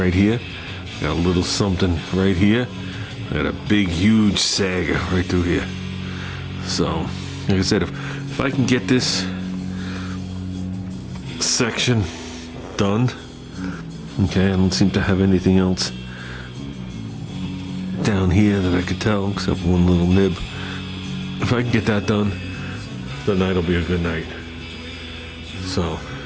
here. Got a little something right here. I got a big, huge sag right through here. So, like I said, if I can get this section done, okay, I don't seem to have anything else down here that I could tell except one little nib. If I can get that done, the night will be a good night. So,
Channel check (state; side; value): identical; both; correlation 1.00